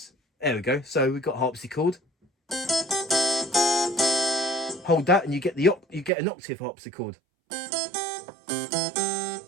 There we go. So we've got harpsichord. Hold that and you get an octave harpsichord.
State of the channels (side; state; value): left; drops out; at 6.1 s